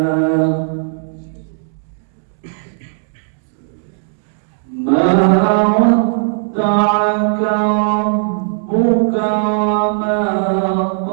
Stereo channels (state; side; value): silent; left; 69 dB below the other